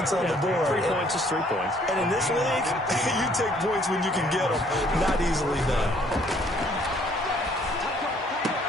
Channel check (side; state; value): both; normal; correlation 0.62